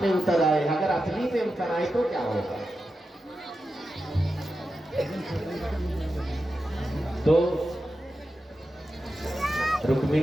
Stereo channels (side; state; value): both; normal; correlation 0.91